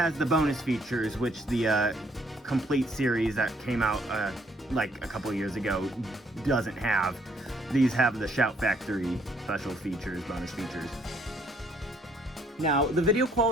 the bonus features, which the complete series that came out like a couple years ago doesn't have. These have the Shout Factory special features, bonus features. Now, the video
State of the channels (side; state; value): both; normal; correlation 0.66